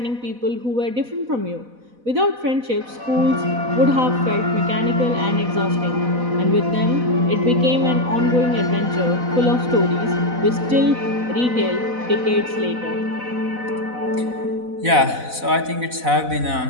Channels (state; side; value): late; left; 4.0 ms